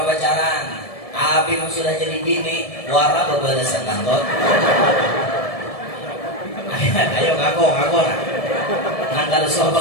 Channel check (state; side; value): late; right; 1.7 ms